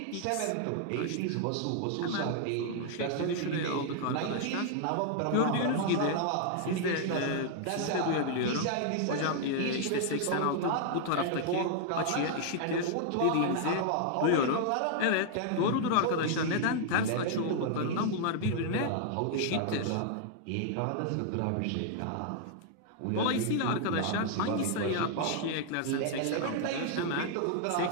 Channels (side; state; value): both; different; correlation 0.00